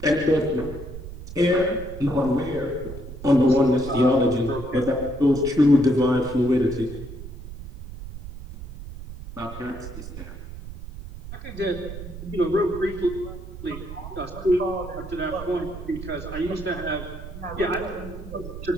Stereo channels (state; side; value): noise; right; rumble, 11 dB below the sound